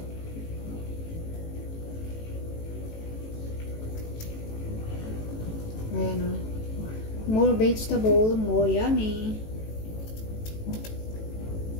Ayan, o. More vegetable, more yummy.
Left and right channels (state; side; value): late; right; 18 ms